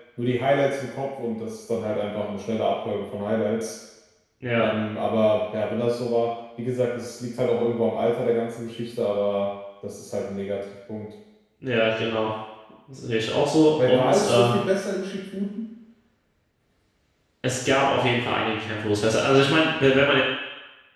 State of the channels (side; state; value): both; identical; correlation 1.00